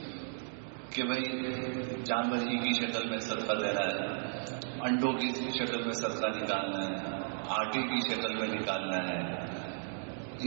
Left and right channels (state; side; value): silent; left; digital silence